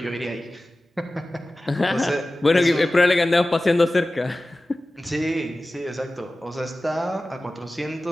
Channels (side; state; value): both; normal; correlation 0.96